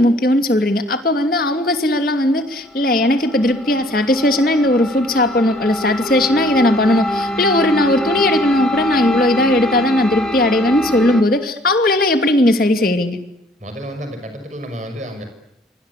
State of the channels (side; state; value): both; normal; correlation 0.58